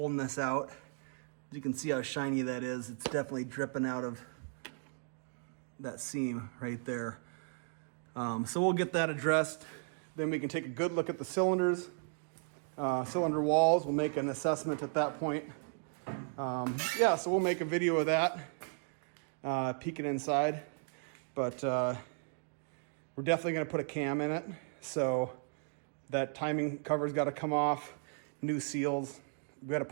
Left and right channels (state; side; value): silent; left; 54 dB below the other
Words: this out. You can see how shiny that is. It's definitely dripping out of that seam right there. So we'll get that addressed. Then we can take a good look at the cylinders, cylinder walls. We'll make an assessment at that point. Yeah, so we'll make a video of that, peeking inside. But we're definitely going to put a cam in it. So that timing cover's got to come off. New seals. We got to